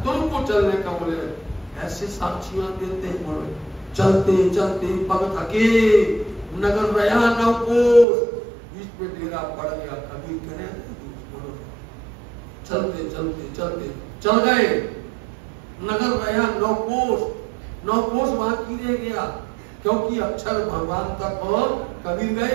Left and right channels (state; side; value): drops out; left; at 8.1 s